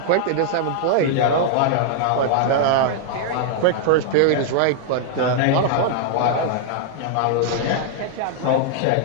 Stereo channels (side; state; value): both; different; correlation 0.00